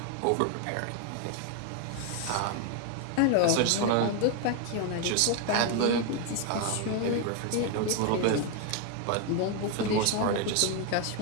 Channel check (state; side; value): different; both; correlation 0.01